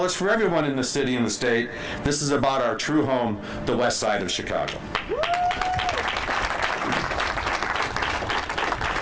it's for everyone in the city and the state, this is about our true home, the west side of Chicago.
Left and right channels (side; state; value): both; identical; correlation 1.00